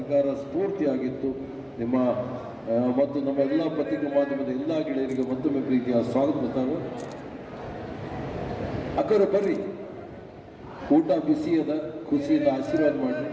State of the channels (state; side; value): identical; both; correlation 1.00